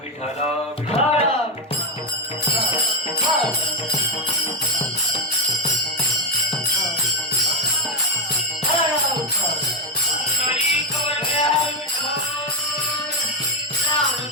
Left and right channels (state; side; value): normal; both; correlation 0.07